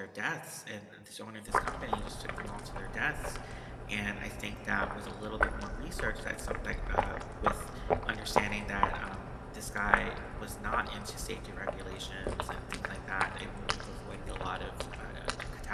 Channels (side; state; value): both; identical; correlation 1.00